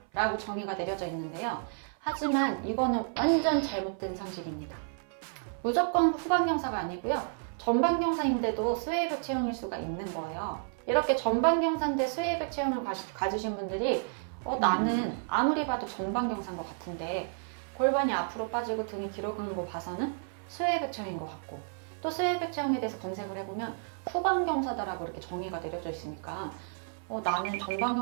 라고 정의가 내려져 있는데요. 하지만 이거는 완전 잘못된 상식입니다. 무조건 후방경사가 아니고요, 전방경사인데도 스웨이백 체형일 수가 있는 거예요. 이렇게 전방경사인데 스웨이백 체형을 가지신 분들이 나는 아무리 봐도 전방경사인 것 같은데 골반이 앞으로 빠지고 등이 뒤로 가는 거 봐서는 스웨이백 체형인 것 같고, 또 스웨이백 체형에 대해서 검색을 해보면 후방경사다라고 이렇게 정의가 내려져 있으니까 나는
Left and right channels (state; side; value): silent; left; 57 dB below the other